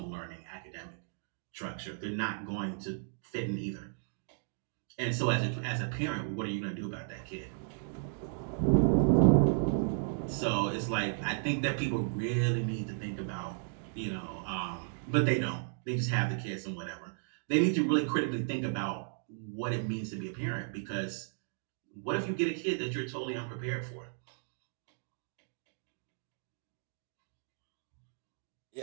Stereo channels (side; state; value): left; silent; digital silence